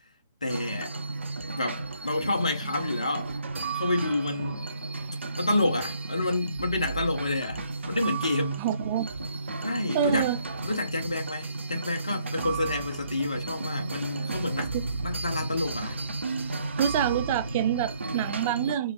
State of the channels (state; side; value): inverted; both; correlation -0.68